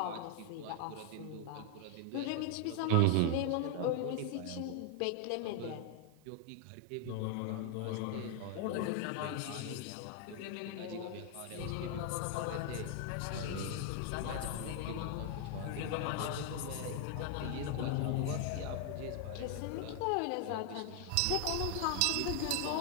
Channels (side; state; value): both; different; correlation 0.00